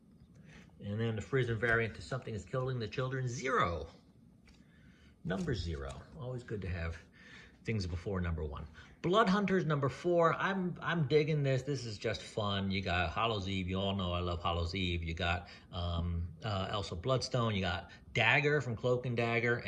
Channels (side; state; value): both; identical; correlation 1.00